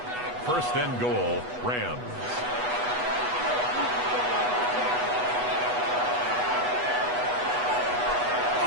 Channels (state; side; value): late; left; 8.1 ms